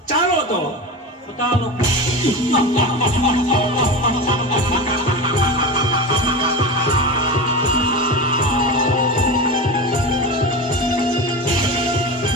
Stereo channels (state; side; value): normal; both; correlation 0.24